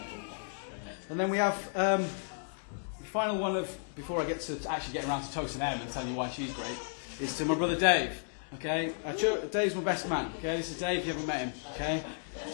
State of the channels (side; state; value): right; silent; 55 dB below the other